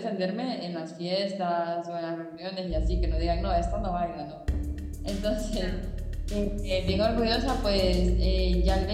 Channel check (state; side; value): identical; both; correlation 1.00